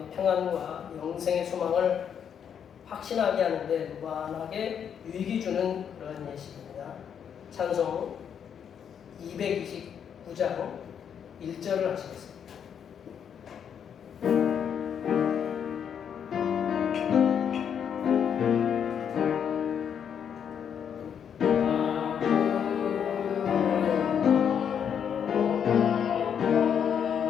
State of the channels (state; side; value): quieter; right; 8.1 dB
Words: 평안과 영생의 소망을 확신하게 하는데 무한하게 유익이 주는 그런 예식입니다. 찬송 229장 1절을 하시겠습니다.